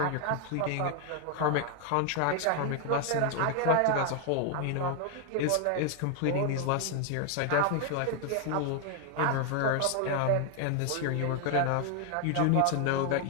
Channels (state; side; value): different; both; correlation 0.00